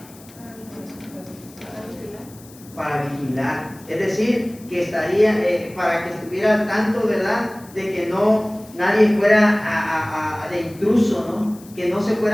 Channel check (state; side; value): noise; left; hiss, 23 dB below the sound